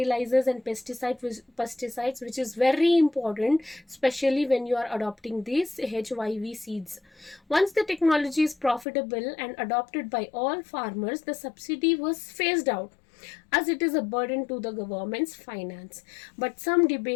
and pesticides, which is very important, especially when you are adopting these HYV seeds. Once the technology is profitable and adopted by all farmers, the subsidy was phased out, as it is a burden to the government's finance. But some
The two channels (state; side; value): drops out; right; at 8.8 s